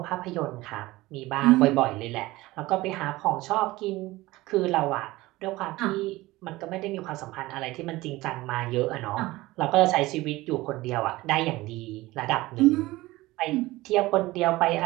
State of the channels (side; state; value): left; quieter; 19.1 dB